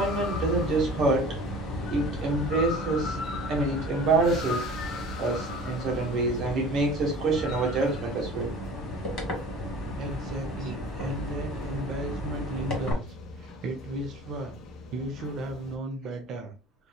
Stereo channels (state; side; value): normal; both; correlation 0.43